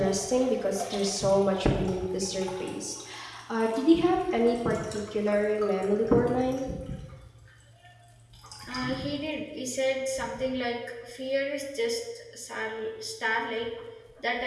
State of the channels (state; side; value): identical; both; correlation 1.00